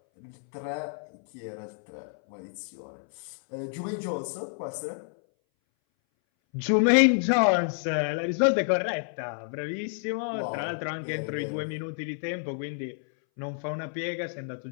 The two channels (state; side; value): silent; right; 58 dB below the other